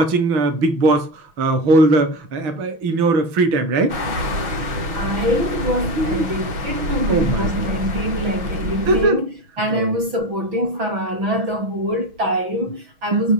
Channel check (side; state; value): left; late; 6.1 ms